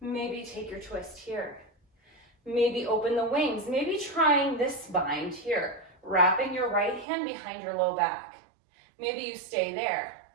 take your twist here. Maybe open the wings. Maybe trying this bind here. Wrapping your right hand behind your low back. Maybe you stay there.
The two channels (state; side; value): drops out; left; at 7.1 s